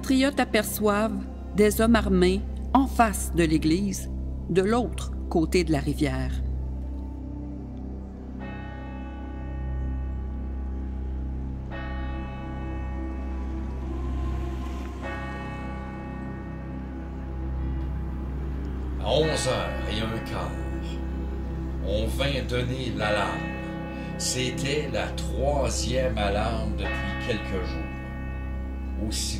aperçoivent des hommes armés en face de l'église, de l'autre côté de la rivière. À 11h15, on vint donner l'alarme. C'était la 3e alarme depuis quelques jours.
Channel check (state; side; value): identical; both; correlation 1.00